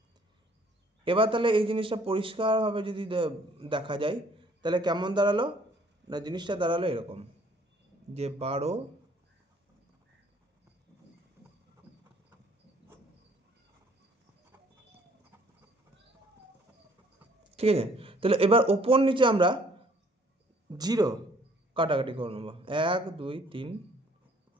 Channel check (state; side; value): normal; both; correlation 0.60